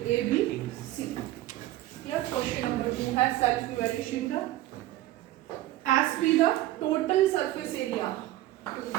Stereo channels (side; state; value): left; quieter; 15.5 dB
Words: A B C. Question number 2 है सेल्फ इवैल्यूएशन का। S be the total surface area